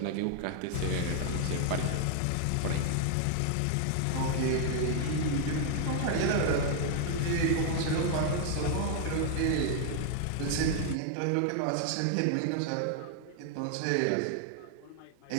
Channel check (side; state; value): both; different; correlation 0.00